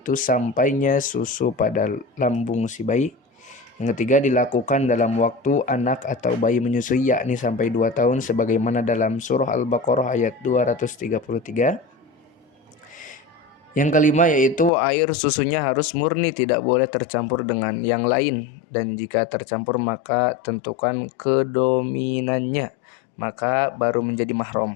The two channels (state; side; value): drops out; right; at 14.7 s